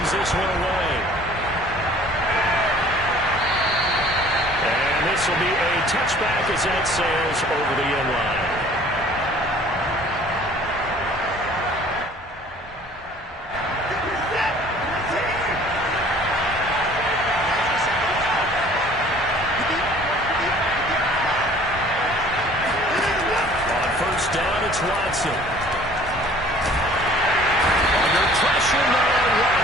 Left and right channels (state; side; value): normal; both; correlation 0.52